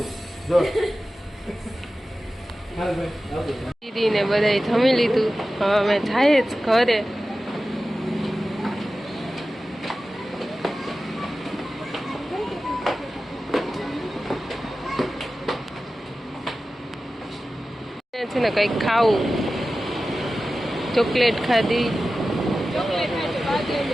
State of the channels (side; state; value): both; normal; correlation 0.95